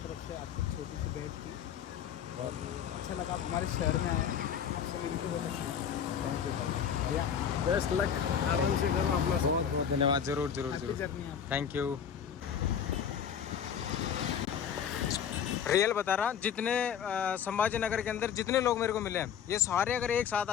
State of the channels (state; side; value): quieter; right; 8.2 dB